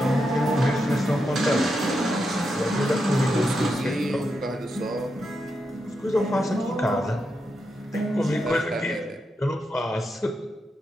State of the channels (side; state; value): both; normal; correlation 0.85